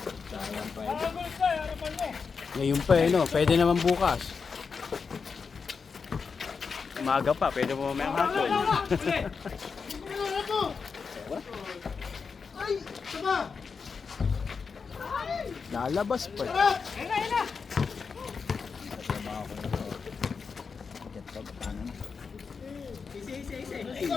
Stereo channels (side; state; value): right; quieter; 5.4 dB